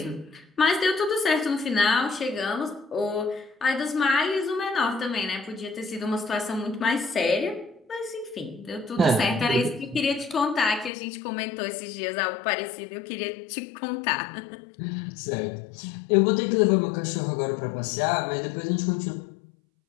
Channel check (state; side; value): drops out; right; at 10.9 s